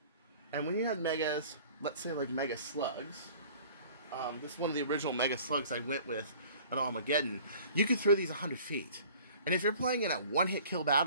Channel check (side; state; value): both; inverted; correlation -0.48